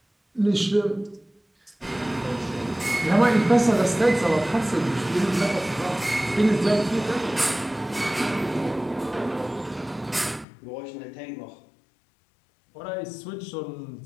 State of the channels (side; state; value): right; drops out; at 10.5 s